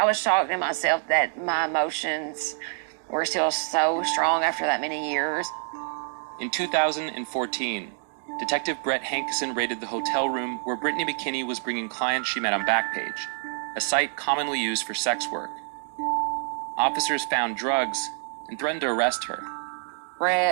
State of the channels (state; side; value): silent; left; 60 dB below the other